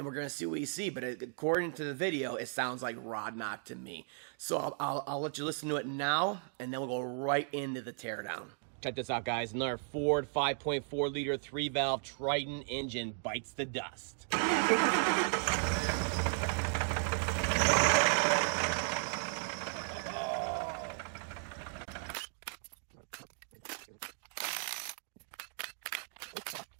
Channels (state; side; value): silent; left; 54 dB below the other